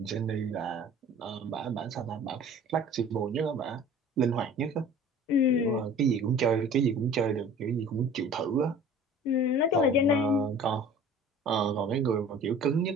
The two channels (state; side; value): normal; both; correlation 0.45